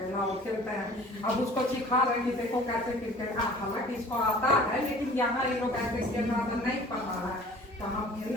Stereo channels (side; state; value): both; normal; correlation 0.47